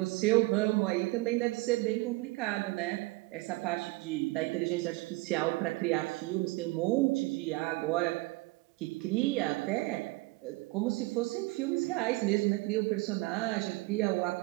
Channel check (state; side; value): quieter; left; 22.3 dB